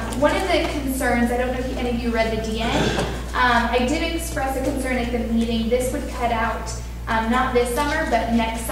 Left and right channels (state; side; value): identical; both; correlation 1.00